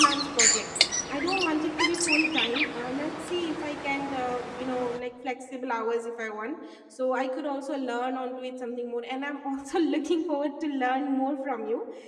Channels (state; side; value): identical; both; correlation 1.00